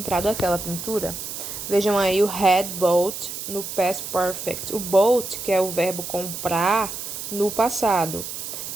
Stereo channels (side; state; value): right; noise; hiss, 7 dB below the sound